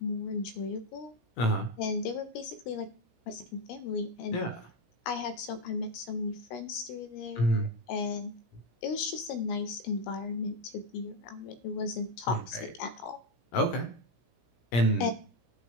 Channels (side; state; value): right; late; 17 ms